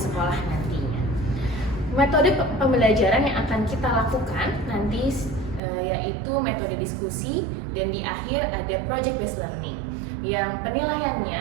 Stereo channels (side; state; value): left; drops out; at 5.6 s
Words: nantinya. Metode pembelajaran yang akan kita lakukan nanti yaitu metode diskusi, dan di akhir ada project based learning yang